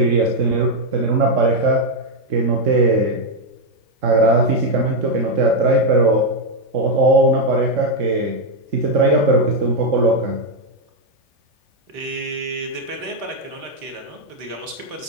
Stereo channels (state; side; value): late; left; 3.8 ms